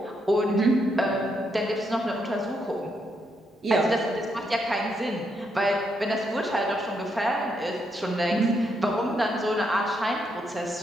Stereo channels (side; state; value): both; normal; correlation 0.78